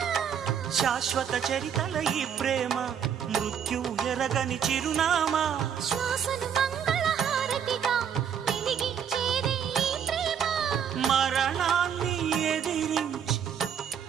శాశ్వత చరితల ఈ ప్రేమ మృత్యు ఎరగని చిరునామా శ్వాసను మంగళహారతిగా వెలిగించేదే ఈ ప్రేమ మరణాన్ని ఎదిరించి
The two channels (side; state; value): left; quieter; 8.2 dB